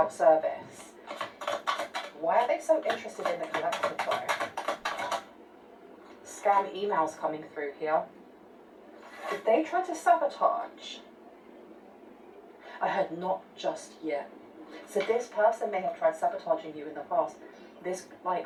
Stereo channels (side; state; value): both; identical; correlation 1.00